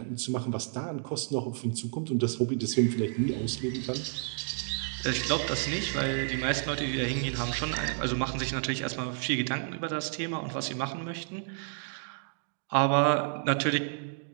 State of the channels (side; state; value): left; silent; digital silence